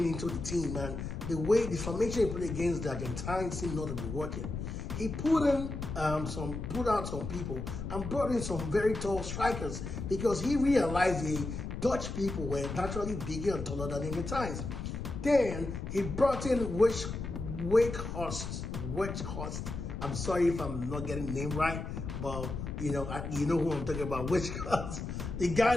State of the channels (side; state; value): left; noise; rumble, 6 dB below the sound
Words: into the team, and the way the formation he played against the Argentines seemed not to be working. He put out some people and brought in some very tall strikers because he realized the Dutch people were naturally bigger and taller than the Argentines. Then he brought in Wakehorst. I'm sorry if I'm not getting the name right, but you know who I'm talking about. Wakehorst, the